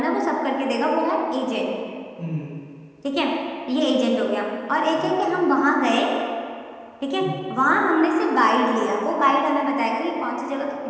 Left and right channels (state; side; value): identical; both; correlation 1.00